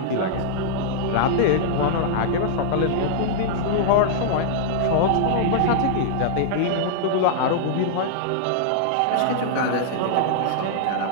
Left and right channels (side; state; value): both; different; correlation -0.02